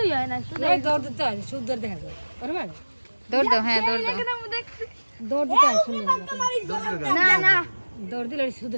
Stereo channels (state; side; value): inverted; both; correlation -1.00